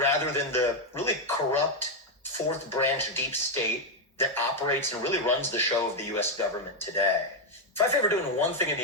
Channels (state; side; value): normal; both; correlation 0.03